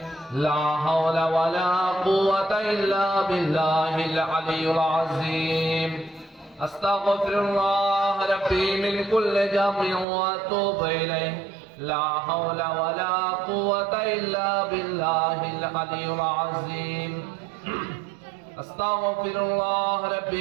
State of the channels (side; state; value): left; drops out; at 10.1 s